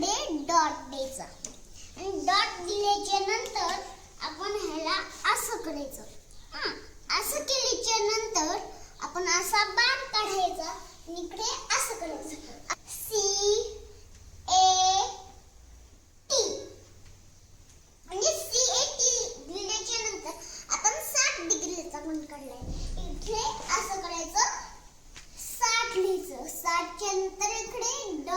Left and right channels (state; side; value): identical; both; correlation 1.00